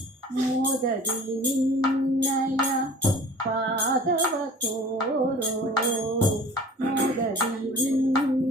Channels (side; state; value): both; normal; correlation 0.45